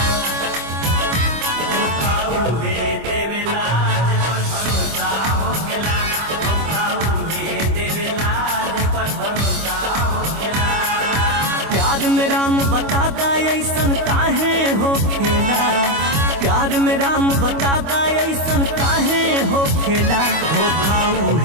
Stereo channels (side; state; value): left; late; 25 ms